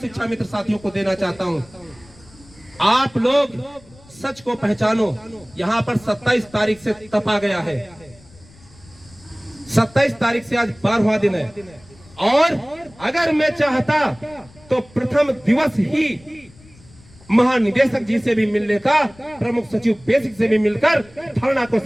मित्र साथियों को देना चाहता हूं। आप लोग सच को पहचानो। यहां पर 27 तारीख से तपा गया है। 27 तारीख से आज 12वां दिन है। और अगर मैं चाहता तो प्रथम दिवस ही महानिदेशक जी से भी मिल लेता, प्रमुख सचिव बेसिक से भी मिलकर धरना को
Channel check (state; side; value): noise; left; rumble, 25 dB below the sound